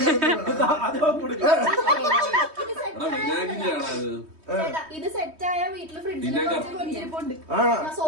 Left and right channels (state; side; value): late; left; 3.2 ms